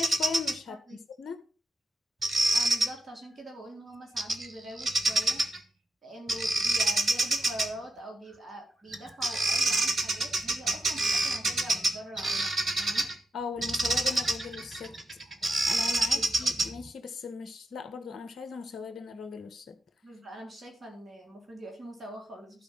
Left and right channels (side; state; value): both; normal; correlation 0.85